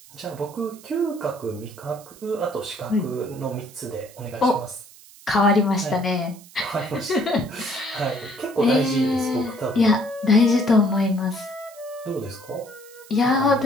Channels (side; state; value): right; noise; hiss, 22 dB below the sound